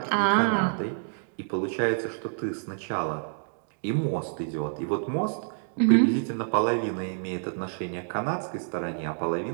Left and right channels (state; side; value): silent; left; digital silence